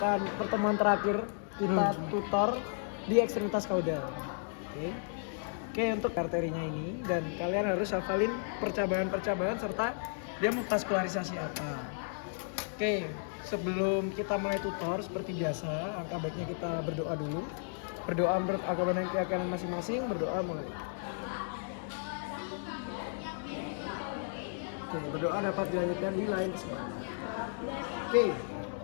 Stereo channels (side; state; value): right; silent; digital silence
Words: pertemuan terakhir kita tutor di ekstremitas kaudal. Oke, untuk arterinya ini dan kalian harus hafalin percabangan-percabangan serta dia muskularisasi apa. Oke, sebelum kita mulai tutor seperti biasa, angka baiknya kita berdoa dulu. Berdoa menurut agama dan keyakinan masing-masing, berdoa mulai. Oke, berdoa dapat dilanjutkan di lain kesempatan. Oke,